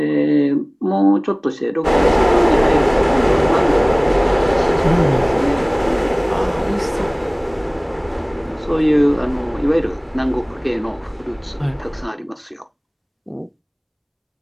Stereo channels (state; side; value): identical; both; correlation 1.00